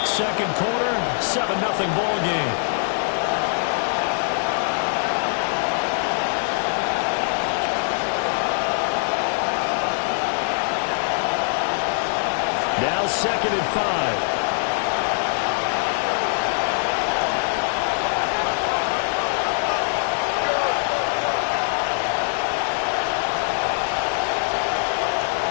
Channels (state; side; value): silent; right; 57 dB below the other